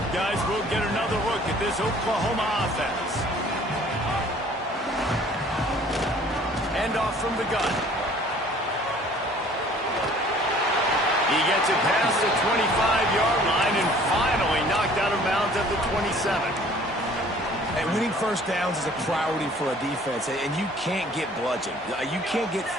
Guys, we'll get another look at this Oklahoma offense. Hand off from the gun. He gets it past the 25-yard line and finally knocked out of bounds at the 27. And winning first downs is a priority for a defense, and you can't get bludgeoned. You can't get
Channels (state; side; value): normal; both; correlation 0.53